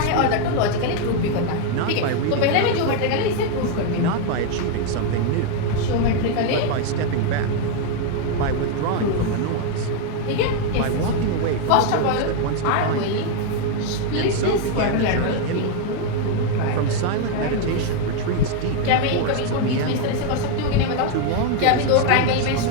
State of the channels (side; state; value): both; different; correlation 0.01